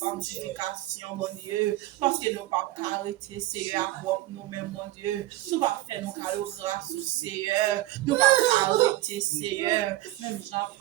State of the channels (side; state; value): left; quieter; 16.8 dB